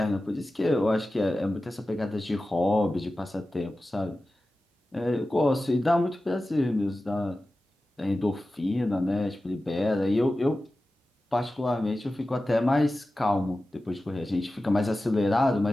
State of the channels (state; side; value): normal; both; correlation 0.95